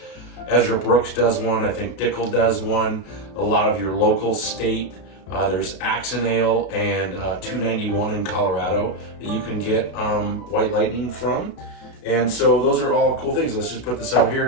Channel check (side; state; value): right; late; 32 ms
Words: Ezra Brooks does one. I think Dickel does one. A lot of your local state. There's Axon Ale and 291 in Colorado that you can get White Lightning from. And so those are all cool things. Let's just put this out